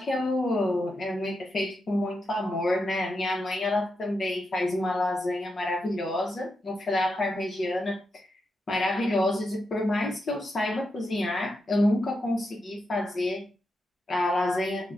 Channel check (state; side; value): normal; both; correlation 0.86